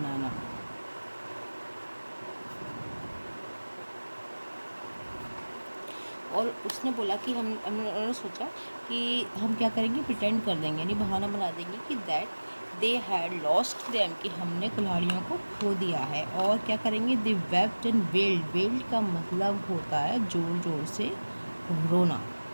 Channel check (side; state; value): both; inverted; correlation -1.00